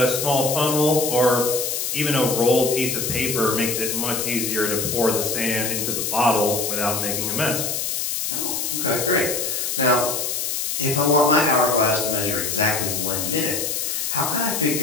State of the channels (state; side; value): noise; left; hiss, 1 dB below the sound